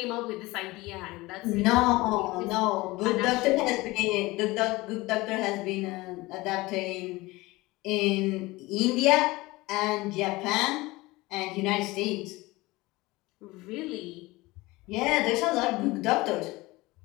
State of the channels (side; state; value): right; quieter; 21.0 dB